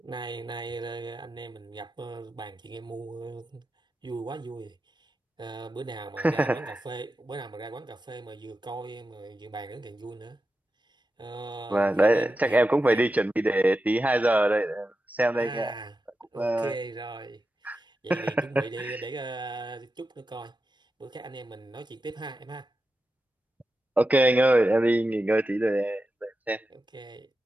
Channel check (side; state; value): both; normal; correlation 0.90